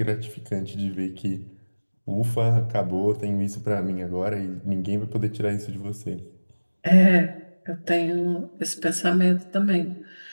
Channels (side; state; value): both; inverted; correlation -1.00